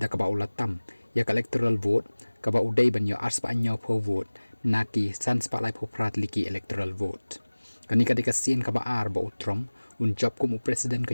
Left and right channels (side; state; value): both; inverted; correlation -1.00